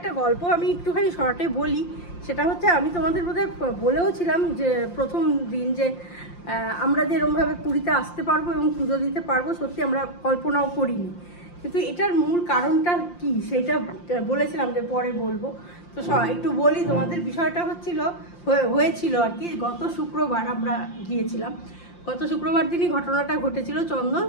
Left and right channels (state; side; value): late; right; 5.7 ms